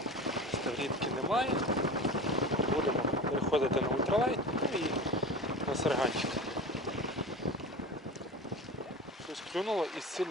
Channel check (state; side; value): normal; both; correlation 0.32